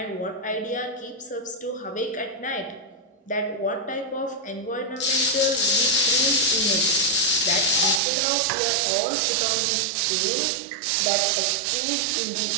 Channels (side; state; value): left; drops out; at 8.0 s